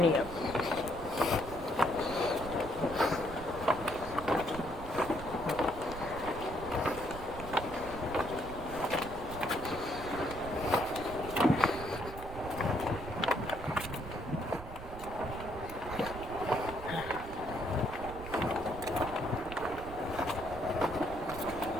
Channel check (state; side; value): noise; right; rumble, 11 dB below the sound